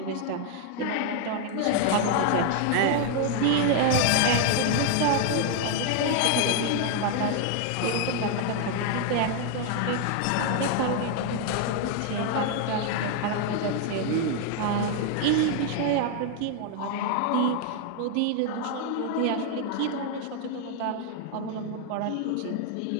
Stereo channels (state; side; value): different; both; correlation 0.00